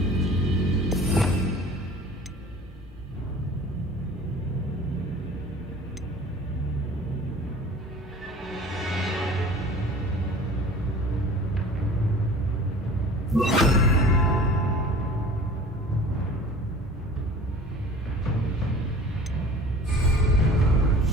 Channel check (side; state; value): both; normal; correlation 0.44